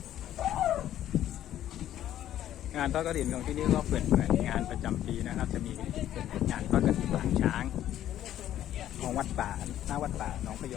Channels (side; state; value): right; quieter; 12.0 dB